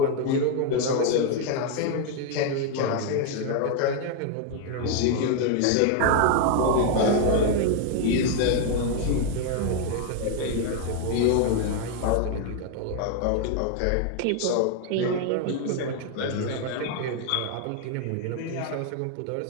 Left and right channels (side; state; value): both; different; correlation 0.00